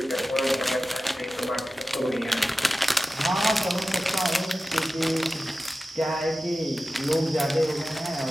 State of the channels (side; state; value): both; normal; correlation 0.95